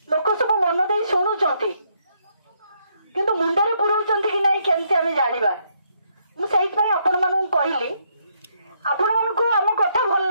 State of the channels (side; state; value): both; inverted; correlation -0.74